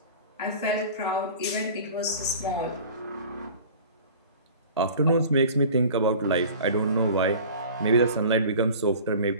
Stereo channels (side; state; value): both; inverted; correlation -0.42